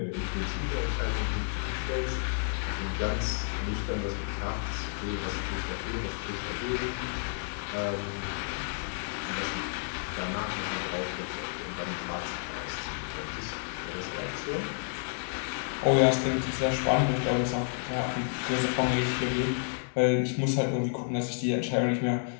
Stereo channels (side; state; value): right; silent; digital silence